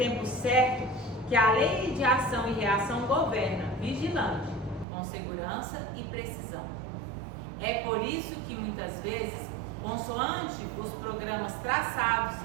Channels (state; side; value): drops out; left; at 4.9 s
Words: certo que a lei de ação e reação governa, vigilante, com segurança e precisão. É por isso que muitas vezes, consoante os programas traçados